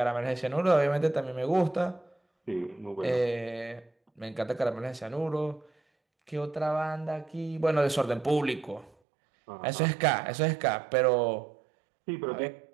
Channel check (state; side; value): drops out; left; at 8.9 s